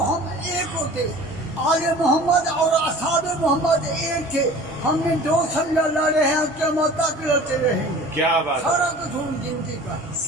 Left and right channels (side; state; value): both; normal; correlation 0.43